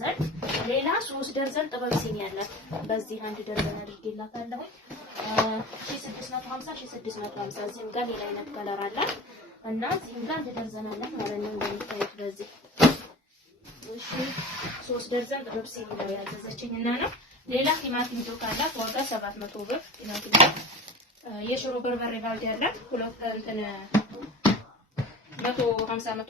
ሌላ 3 ደርዘን ጥበብ ሲኒ አላት። በዚህ አንድ ደርዘን አድርጌላታለሁ 1650 እዚህም ጋር ሌላ አይነት ከለር አላት እና እዚህም ጋር አንድ ደርዘን አላት ማለት ነው እንደምታዩት በዚህ። እሺ 3 ደርዘን ጥበብ ሲኒ ነው ያዘዘችኝና ነው። ሌላ ቲማቲም ጆክ አላት ዋጋ 700 ብር። ቲማቲም የሽሮ በርበሬ ባልዲ አላት ሁለት እንትን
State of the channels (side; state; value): both; normal; correlation 0.35